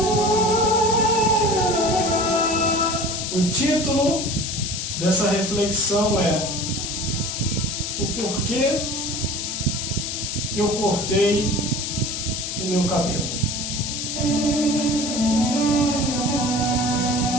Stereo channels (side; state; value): left; noise; hiss, 4 dB below the sound